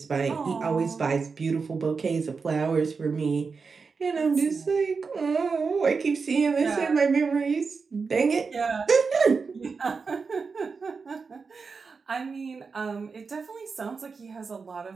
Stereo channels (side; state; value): left; quieter; 4.9 dB